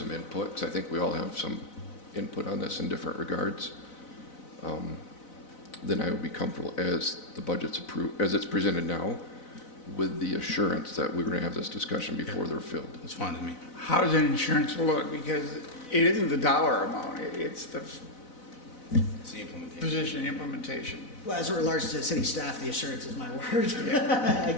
input, because I think we all have some input on this in different regards, then I would be comfortable as the budget's approved, as it's presented now, with the assurance that we're going to have this discussion before they're filled. That's fine with me. How does an insurance look? Because it isn't the dollar amount, it's the It's the implementation. position implementation. Well, as it relates to city staff, the assurance is my word, I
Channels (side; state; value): right; late; 4.0 ms